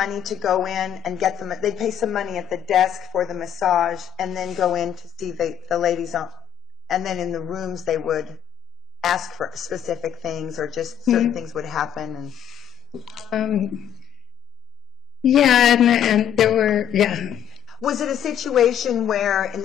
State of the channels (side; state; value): right; quieter; 10.3 dB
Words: to go in and get them. They'd pay some money at the desk for the massage, and then go in to see the ladies on. And then in the rooms, they would ask for specific things, or just certain things would happen. And yeah, and there were, yeah. Was it a situation where, in